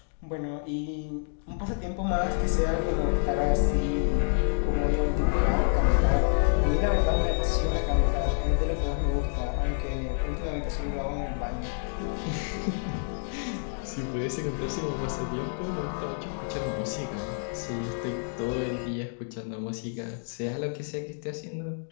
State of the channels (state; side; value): silent; right; digital silence